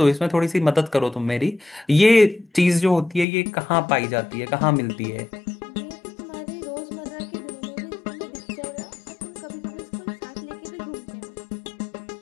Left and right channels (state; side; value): drops out; right; at 3.2 s